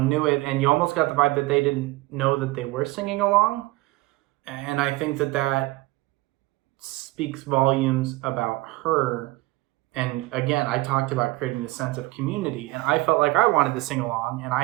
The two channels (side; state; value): left; quieter; 20.6 dB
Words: knew it, and you almost got the vibe that they didn't know that they were singing along. And I think that speaks volumes about her. And again, I talked about creating this sense of community, and I felt like I wanted to sing along, and